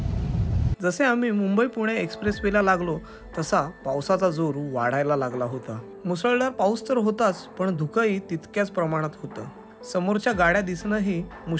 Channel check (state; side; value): identical; both; correlation 1.00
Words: जसे आम्ही मुंबई पुणे एक्सप्रेस वेला लागलो तसा पावसाचा जोर वाढायला लागला होता. मुसळधार पाऊस तर होताच, पण धुकंही तितक्याच प्रमाणात होतं. समोरच्या गाड्या दिसणंही